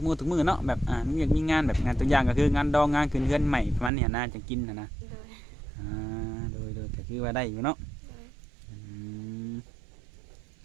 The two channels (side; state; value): left; drops out; at 3.9 s